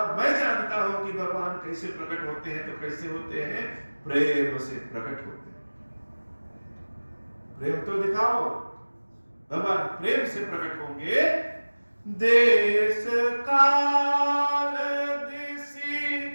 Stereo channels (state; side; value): inverted; both; correlation -1.00